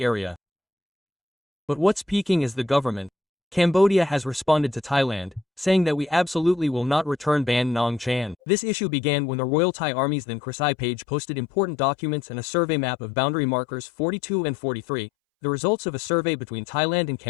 area. But what's peaking is the government. Cambodia has responded to Thailand, saying that we absolutely will not return Ban Nong Chan. This issue began when the Royal Thai Army's then Krisai page posted important documents and a survey map of boundary markers 42 and 43, the results of a survey between Thailand and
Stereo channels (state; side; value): drops out; right; at 8.3 s